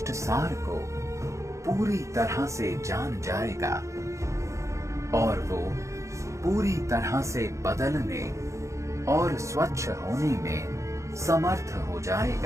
सार को पूरी तरह से जान जाएगा और वो पूरी तरह से बदलने और स्वच्छ होने में समर्थ हो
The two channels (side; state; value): left; late; 0.15 ms